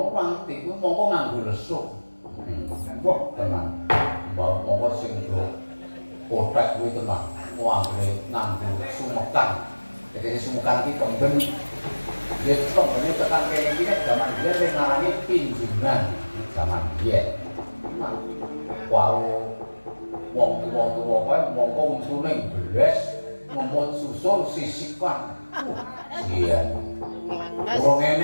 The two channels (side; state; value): both; inverted; correlation -1.00